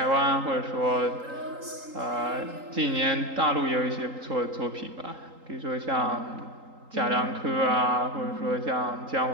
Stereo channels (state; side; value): late; left; 3.8 ms